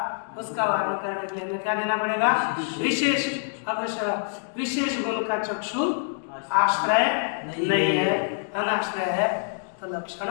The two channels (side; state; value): right; silent; digital silence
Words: उसका वर्णन करने के लिए हमें क्या देना पड़ेगा, विशेष। अवश्य विशेष गुण का चक्षु आश्रय नहीं है, अनाश्रय है, तो लक्षण